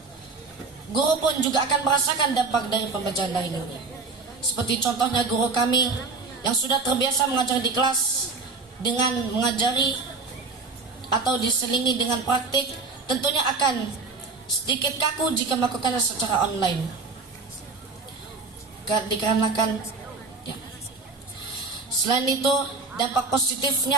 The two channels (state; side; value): quieter; left; 4.1 dB